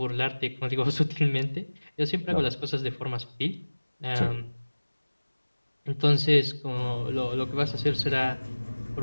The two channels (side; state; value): both; inverted; correlation -1.00